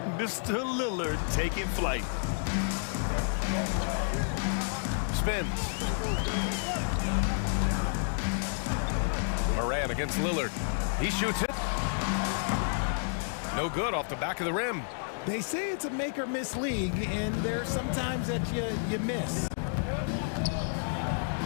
Mr. Lillard taking flight. Spins. Moran against Lillard. He shoots it. No good off the back of the rim. They say it's a make or miss league, and there's sometimes that you miss.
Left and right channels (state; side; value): silent; right; digital silence